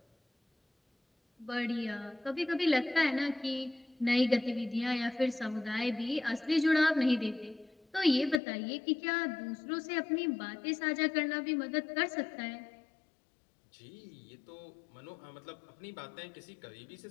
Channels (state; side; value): drops out; right; at 8.4 s